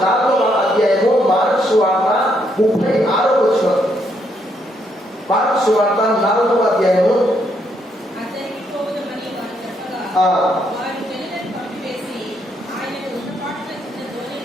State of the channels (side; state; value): both; normal; correlation 0.74